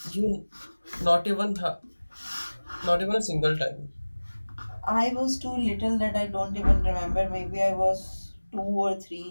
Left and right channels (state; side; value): inverted; both; correlation -1.00